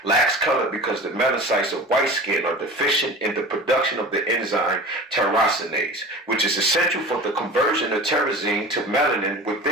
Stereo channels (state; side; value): normal; both; correlation 0.37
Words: lacks color because the melanocytes of white skin are deficient in the production of the enzyme tyrosinase, which is essential for the conversion of tyrosine to melanin